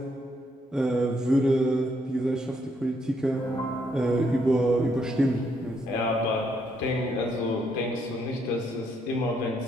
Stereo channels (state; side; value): normal; both; correlation 0.74